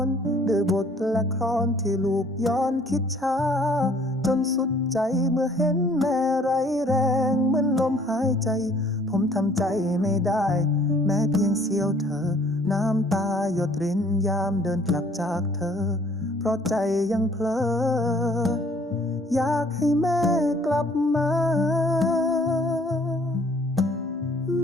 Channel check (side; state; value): both; normal; correlation 0.58